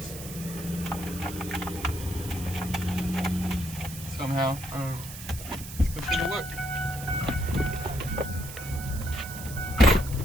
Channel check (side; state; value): right; noise; hiss, 12 dB below the sound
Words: Somehow. Let's go take a look.